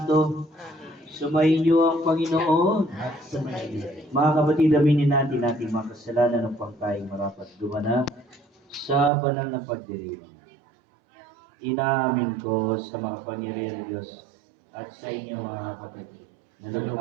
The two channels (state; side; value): drops out; left; at 9.1 s